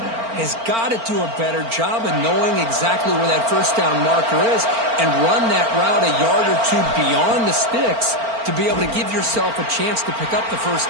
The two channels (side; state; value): left; late; 4.4 ms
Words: has got to do a better job of knowing exactly where that 1st down marker is and run that route a yard or two beyond the sticks to be able to give yourself a chance to pick up the